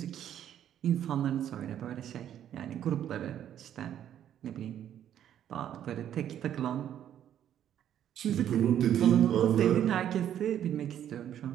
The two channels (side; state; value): left; quieter; 10.4 dB